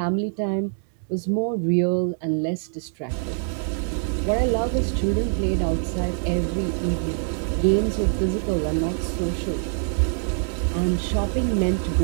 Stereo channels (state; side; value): silent; left; 62 dB below the other